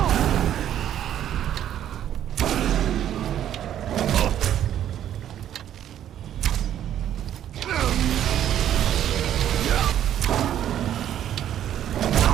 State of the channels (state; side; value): quieter; left; 10.9 dB